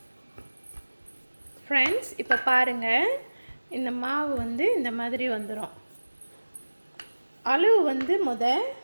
ஃப்ரெண்ட்ஸ், இப்போ பாருங்கள், இந்த மாவு வந்து இந்த மாதிரி வந்துடும். அளவு வந்து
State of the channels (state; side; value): inverted; both; correlation -1.00